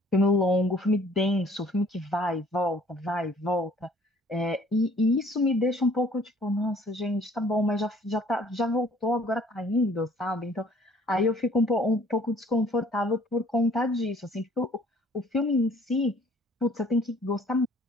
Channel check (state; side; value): normal; both; correlation 0.56